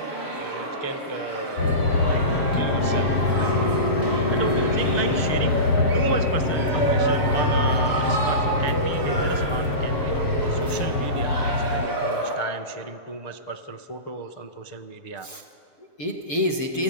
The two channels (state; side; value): late; right; 7.1 ms